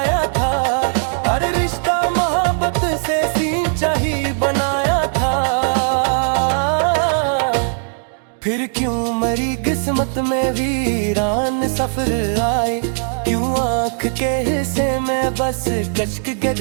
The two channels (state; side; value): silent; left; digital silence